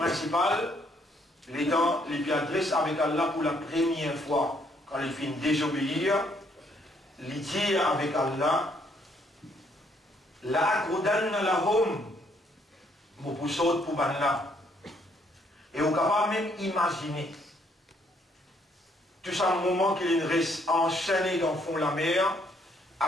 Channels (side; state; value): both; normal; correlation 0.69